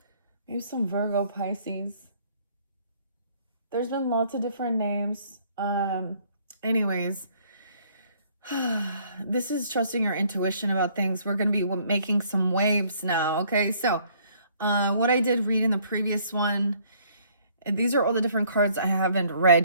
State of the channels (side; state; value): both; inverted; correlation -0.62